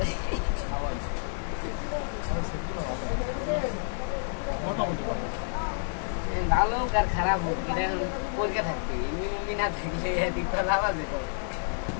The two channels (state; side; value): silent; right; digital silence